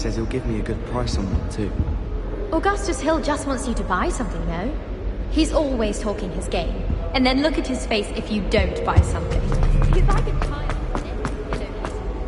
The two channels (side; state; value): both; identical; correlation 1.00